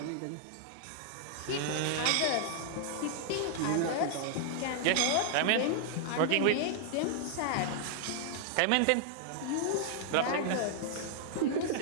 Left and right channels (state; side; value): different; both; correlation -0.01